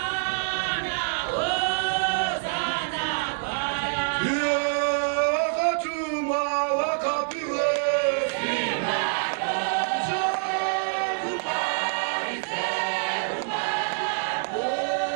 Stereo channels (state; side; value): silent; left; digital silence